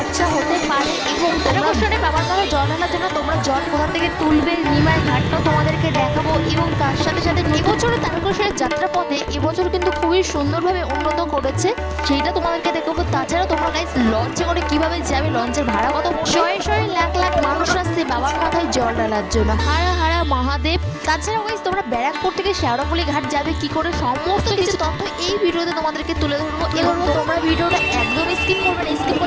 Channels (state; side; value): identical; both; correlation 1.00